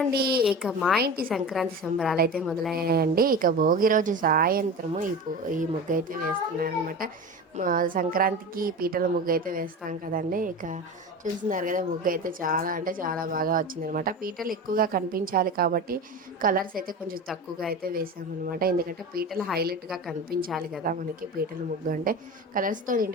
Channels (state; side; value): normal; both; correlation 0.29